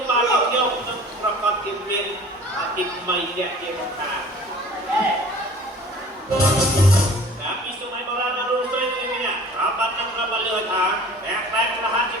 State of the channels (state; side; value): normal; both; correlation 0.45